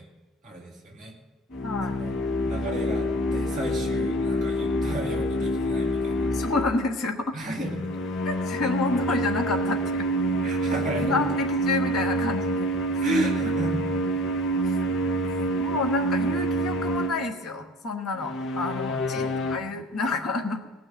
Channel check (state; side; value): normal; both; correlation 0.43